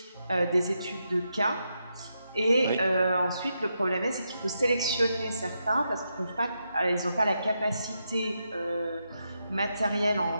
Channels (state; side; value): inverted; both; correlation -0.84